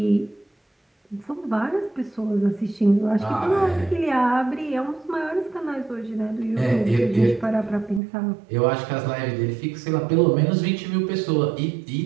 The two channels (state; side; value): drops out; left; at 8.0 s